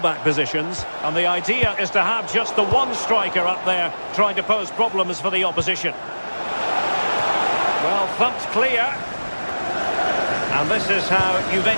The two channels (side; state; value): both; inverted; correlation -1.00